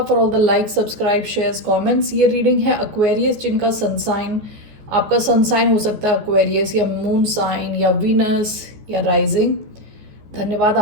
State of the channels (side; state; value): left; late; 14 ms